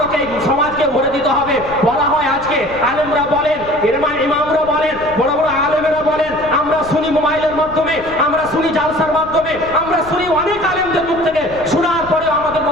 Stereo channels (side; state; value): left; noise; rumble, 17 dB below the sound